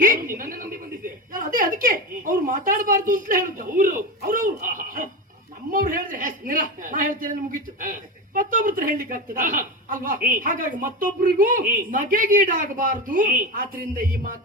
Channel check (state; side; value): normal; both; correlation 0.21